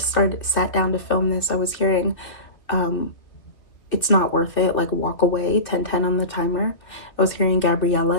sat down to film this, I was hearing It's Not Worth It, like Walk Away, 10:10 on the timer. I was hearing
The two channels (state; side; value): late; right; 2.4 ms